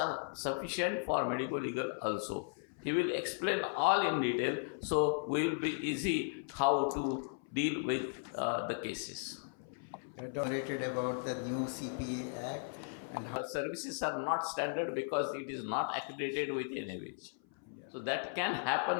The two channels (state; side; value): silent; right; 53 dB below the other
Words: sufficient for medico-legal also. He will explain all in detail, so we will be easy how to deal with the cases. Narrated about the new CPA Act and how Services are not standard because it is not accredited with NABH. So that can